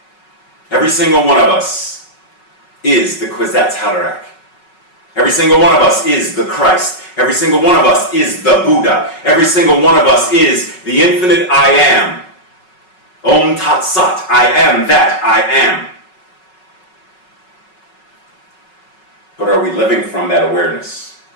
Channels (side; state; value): right; late; 5.4 ms